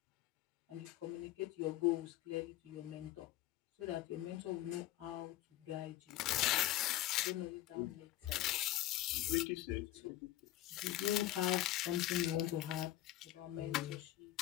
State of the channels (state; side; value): quieter; right; 14.9 dB